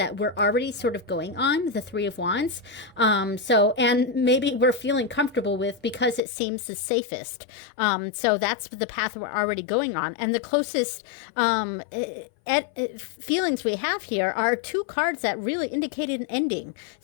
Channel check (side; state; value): right; drops out; at 6.2 s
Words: we're already sort of going on, the 3 of Wands. So, and maybe we're feeling comfortable with because it seems the safest. So that's the path we're already going on. And the closest feelings we have here are 2 cards that really indicated an ending.